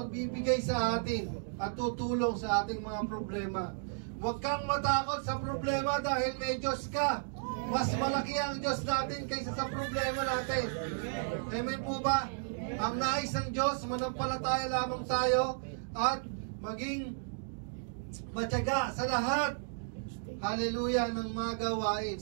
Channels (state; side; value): silent; left; digital silence